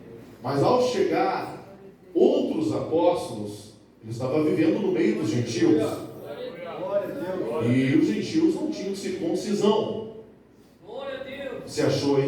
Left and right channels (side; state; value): both; identical; correlation 1.00